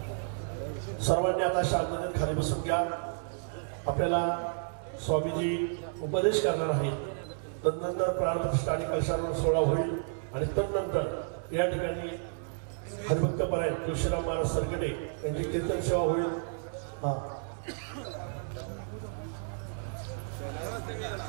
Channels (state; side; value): silent; left; 57 dB below the other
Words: सर्वांनी आता शांततेत खाली बसून घ्या. आपल्याला स्वामीजी उपदेश करणार आहेत. तदनंतर प्राणप्रतिष्ठा आणि कलशारोहण सोहळा होईल आणि तदनंतर या ठिकाणी हरिभक्तपरायण तुळशीराम महाराज सरगटे यांची कीर्तन सेवा होईल.